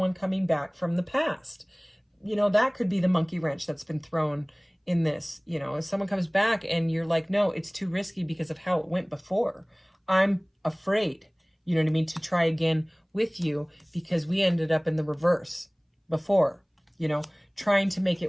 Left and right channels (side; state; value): both; identical; correlation 1.00